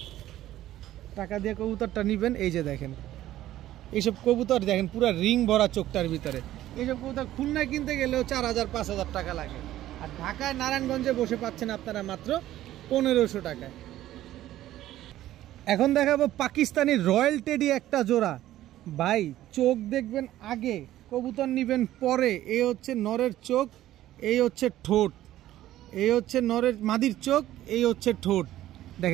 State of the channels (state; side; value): quieter; left; 13.9 dB